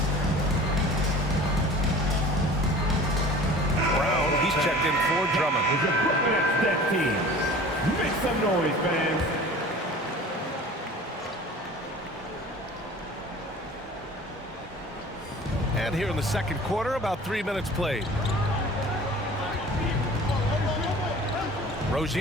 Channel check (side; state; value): both; normal; correlation 0.43